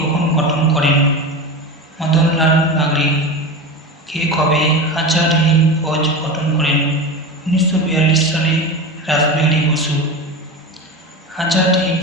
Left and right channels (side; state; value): both; normal; correlation 0.25